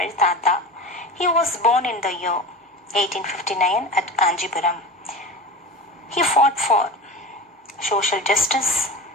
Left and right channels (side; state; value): both; normal; correlation 0.30